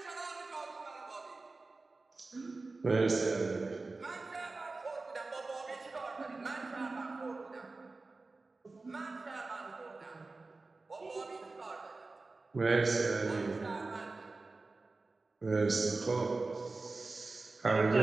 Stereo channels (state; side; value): quieter; left; 3.6 dB